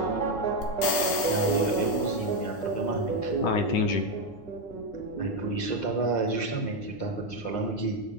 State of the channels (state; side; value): late; right; 9.8 ms